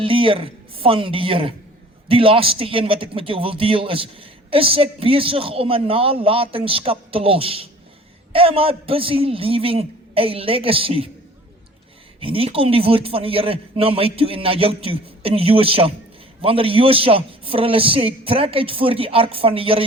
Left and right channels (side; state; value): both; normal; correlation 0.48